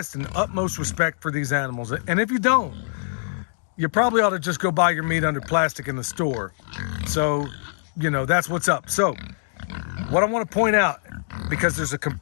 and utmost respect for these animals. And if you don't, you probably ought to just go buy your meat under plastic in the store. So, you know, that's what's up. So, what I want to point out, because there's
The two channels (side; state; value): right; silent; digital silence